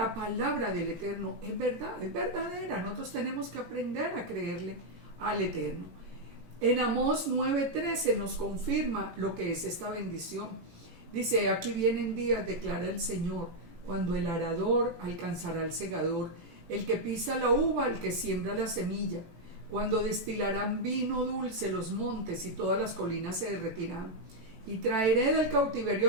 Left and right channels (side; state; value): left; late; 18 ms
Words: palabra del Eterno es verdad, es verdadera. Nosotros tenemos que aprender a creerle al Eterno. En Amós 9:13 nos confirma lo que es esta bendición. Dice, aquí vienen días, declara el Señor, cuando el arador alcanzará al segador, el que pisa la uva, el que siembra la semilla, cuando destilarán vino dulce los montes y todas las colinas se derretirán. Y traeré del